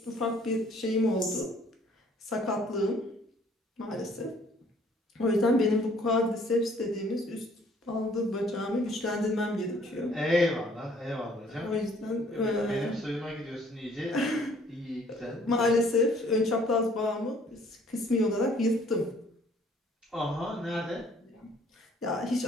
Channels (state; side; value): normal; both; correlation 0.59